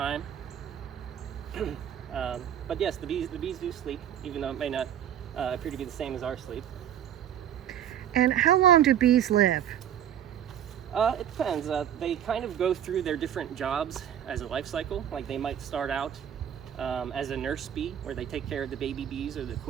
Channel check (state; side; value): quieter; left; 10.1 dB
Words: But yes, the bees do sleep, even though it may not appear to be the same as our sleep. And how long do bees live? It depends. They kind of go through their different jobs as a life cycle. Like they might start out as a nurse bee, where they take care of the baby bees or the